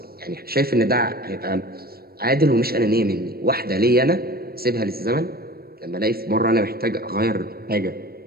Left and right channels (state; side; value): late; left; 0.44 ms